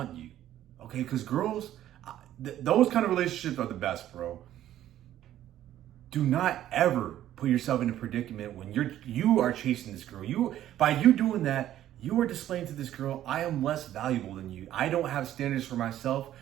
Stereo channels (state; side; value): quieter; left; 12.4 dB